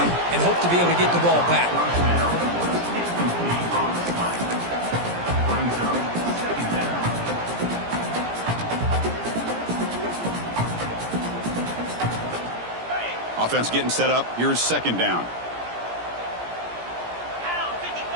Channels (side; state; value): left; late; 17 ms